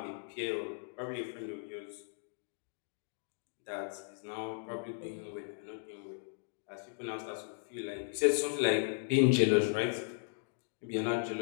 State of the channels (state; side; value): silent; right; digital silence